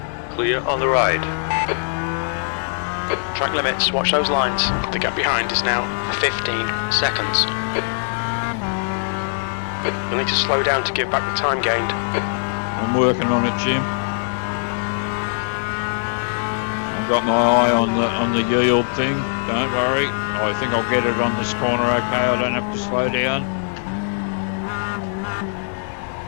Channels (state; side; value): silent; right; digital silence